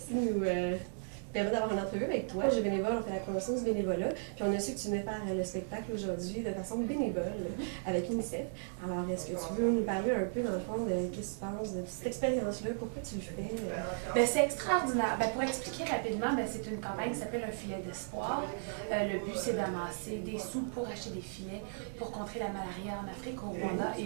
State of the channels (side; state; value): left; silent; 54 dB below the other